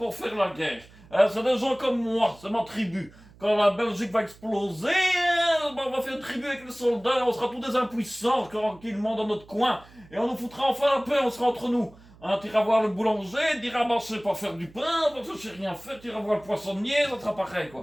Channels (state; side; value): noise; right; hum, 24 dB below the sound